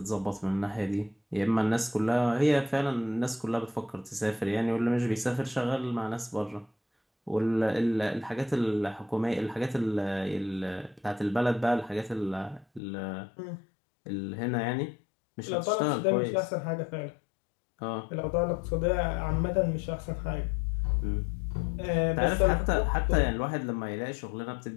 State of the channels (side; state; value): right; drops out; at 12.8 s